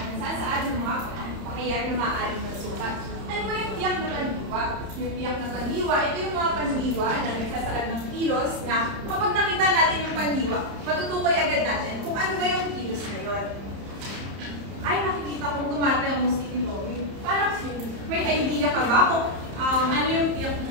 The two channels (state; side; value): late; left; 30 ms